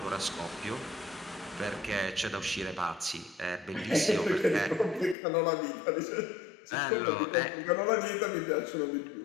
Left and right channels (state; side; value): drops out; right; at 5.2 s